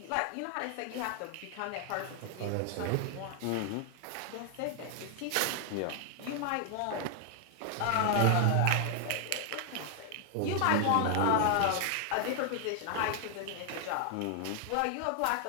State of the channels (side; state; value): both; different; correlation 0.00